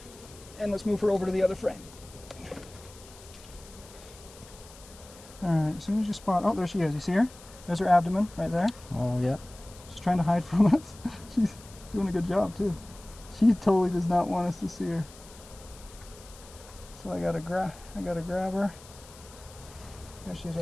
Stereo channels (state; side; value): noise; left; hiss, 20 dB below the sound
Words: and let's move her over to the other frame. All right, as soon as you spot, oh, there she is. You see her? There's her abdomen right there. Oh, yeah. She's trying to hide from us. She's doing a good job too. She totally does not want us to see her. So I gotta grab her. There she is